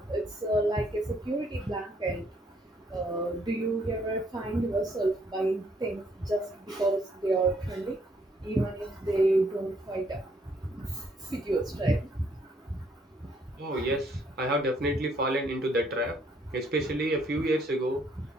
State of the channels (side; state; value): both; normal; correlation 0.68